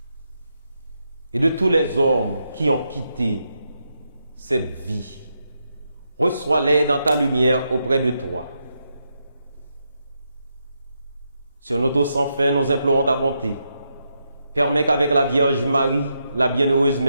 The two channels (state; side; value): inverted; both; correlation -0.83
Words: et de tous les hommes qui ont quitté cette vie. Reçois-les dans ta lumière auprès de toi. Sur notre sans fin, nous implorons ta bonté. Permets qu'avec la Vierge Marie, la bienheureuse